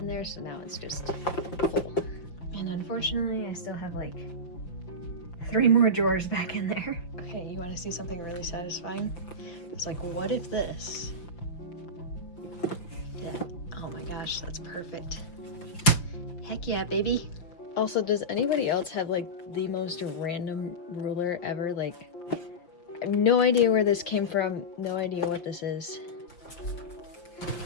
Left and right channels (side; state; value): right; late; 5.8 ms